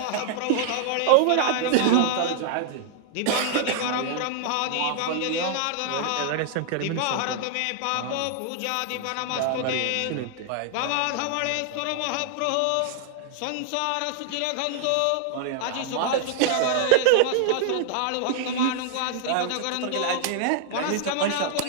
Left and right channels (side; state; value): both; different; correlation -0.01